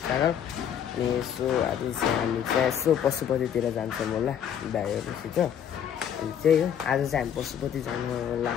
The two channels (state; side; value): quieter; right; 9.0 dB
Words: channel. So आज चाहिँ हामी चाहिँ यसो पशुपतितिर जान्छौँ होला दाइहरूसित। अनि त्यही हो, आज चाहिँ हामी पशुपति जानु